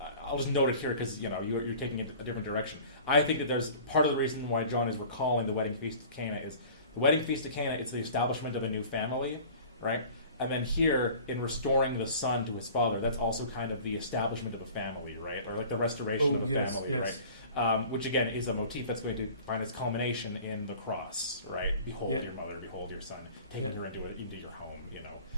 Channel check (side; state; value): both; inverted; correlation -0.44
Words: note it here because you're taking it a different direction. I think that there's part of the reason why John is recalling the wedding feast of Cana is the wedding feast of Cana. It's the establishment of a new family, right? And then here, in restoring the son to his father, that's also kind of the establishment of a family, right? Or like the restoration of a family, right? which again is a motif that's going to find its culmination in the cross, right? Behold your mother, behold your son, taking her into your home,